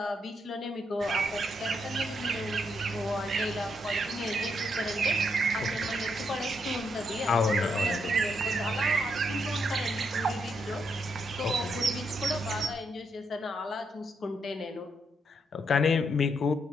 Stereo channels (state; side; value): normal; both; correlation 0.77